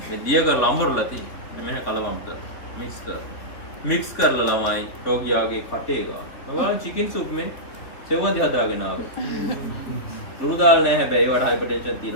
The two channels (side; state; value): right; late; 3.0 ms